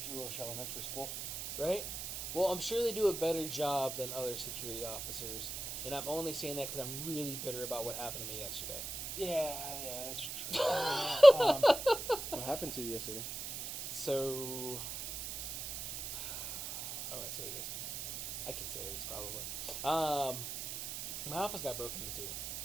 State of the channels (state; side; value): noise; right; hiss, 6 dB below the sound